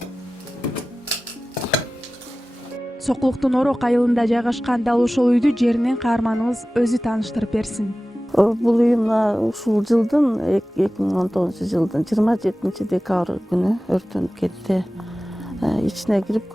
Сокулуктун Орок айылында жайгашкан дал ошол үйдү жеринен каарманыбыз өзү тааныштырып берсин. Бул үй мына ушул жылдын 2019-жылдын 27-декабрь күнү өрттөнүп кетти. Ичине кирип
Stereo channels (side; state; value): both; normal; correlation 0.96